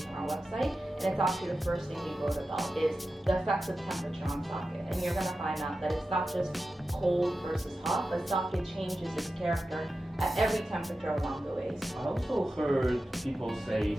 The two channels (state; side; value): normal; both; correlation 0.92